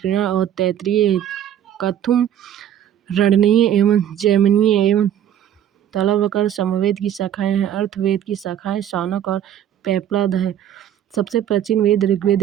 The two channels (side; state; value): left; quieter; 10.4 dB